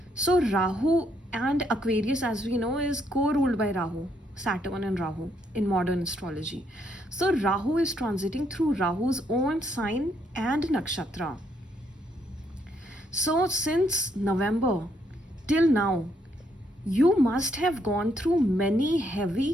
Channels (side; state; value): both; normal; correlation 0.73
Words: So Rahu and Aquarius, as we know, is co-ruled by Rahu, Saturn and Rahu in modern astrology. So Rahu is transiting through Rahu's own sign and nakshatra. So since November till now, you must have gone through many